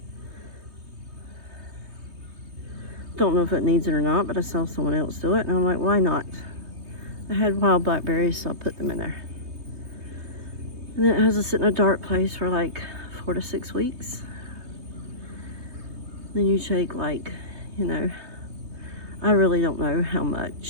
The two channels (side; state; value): left; late; 3.2 ms